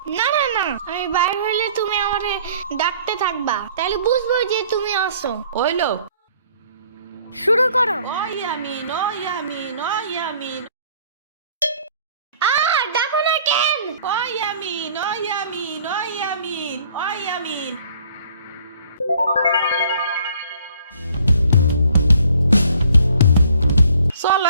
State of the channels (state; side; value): inverted; both; correlation -0.57